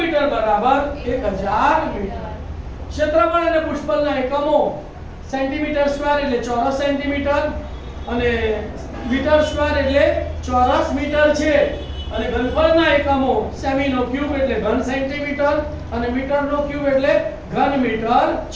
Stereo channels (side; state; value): both; identical; correlation 1.00